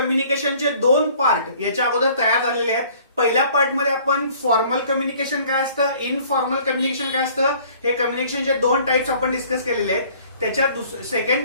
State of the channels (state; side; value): inverted; both; correlation -0.54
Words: दोन पार्ट याच्या अगोदर तयार झालेले आहेत. पहिल्या पार्ट मध्ये आपण फॉर्मल कम्युनिकेशन काय असतं, इनफॉर्मल कम्युनिकेशन काय असतं, हे कम्युनिकेशनचे दोन टाइप्स आपण डिस्कस केलेले आहेत. त्याच्या